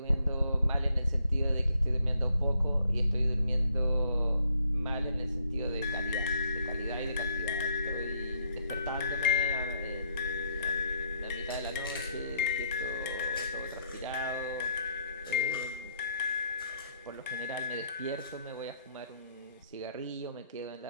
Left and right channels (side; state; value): both; inverted; correlation -0.70